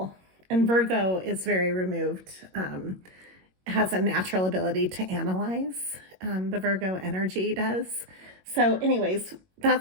and Virgo is very removed, has a natural ability to analyze. The Virgo energy does. So anyways,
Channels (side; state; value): left; late; 22 ms